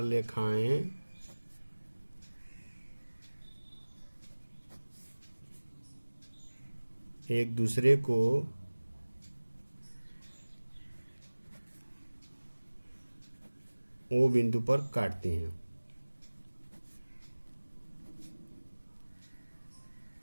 रेखाएं एक दूसरे को ओ बिंदु पर काटती हैं।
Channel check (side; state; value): both; inverted; correlation -1.00